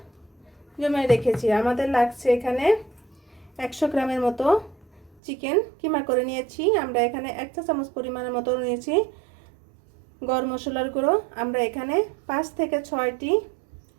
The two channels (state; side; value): drops out; left; at 5.2 s